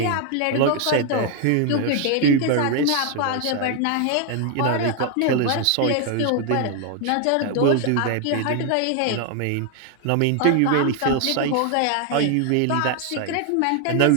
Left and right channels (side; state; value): both; different; correlation 0.01